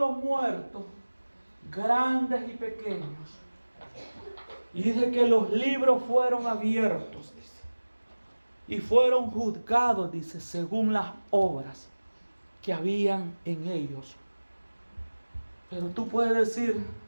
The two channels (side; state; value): both; inverted; correlation -1.00